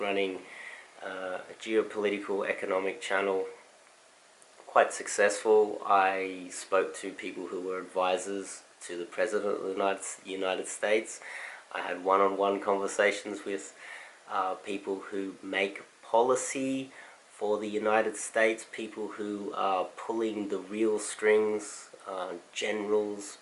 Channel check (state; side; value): identical; both; correlation 1.00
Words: running a geopolitical economic channel, quite successful. I spoke to people who were advisors to the President of the United States. I had one-on-one conversations with people who make policy for the United States, people who are pulling the real strings, generals,